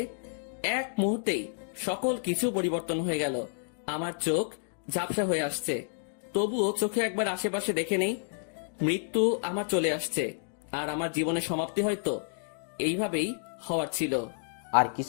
এক মুহূর্তেই সকল কিছু পরিবর্তন হয়ে গেল। আমার চোখ ঝাপসা হয়ে আসছে, তবুও চোখে একবার আশেপাশে দেখে নেই। মৃত্যু আমার চলে আসছে, আর আমার জীবনের সমাপ্তি হয়তো এইভাবেই হওয়ার ছিল। আর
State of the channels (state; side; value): silent; right; digital silence